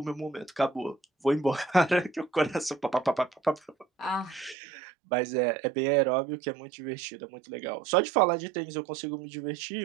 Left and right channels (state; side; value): drops out; left; at 4.5 s